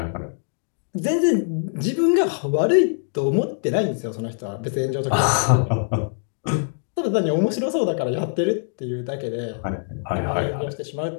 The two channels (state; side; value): silent; right; digital silence